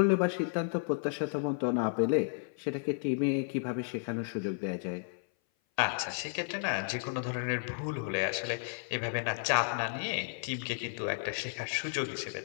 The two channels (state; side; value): silent; right; 56 dB below the other